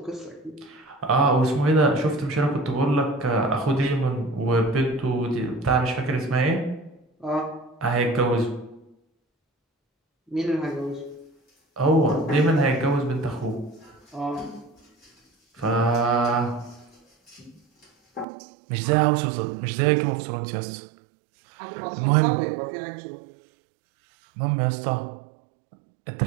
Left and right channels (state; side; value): drops out; left; at 18.2 s